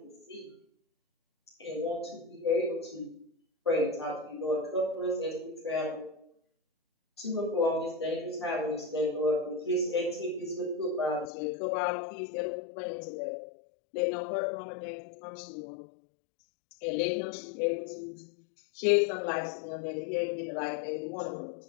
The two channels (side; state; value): right; drops out; at 11.3 s